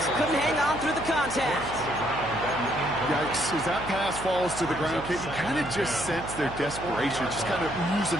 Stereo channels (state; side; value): noise; right; hum, 11 dB below the sound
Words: Couldn't hang on through the contact. Yeah, looks as that pass falls to the ground, Kate, you kind of just sense their desperation, just kind of oozing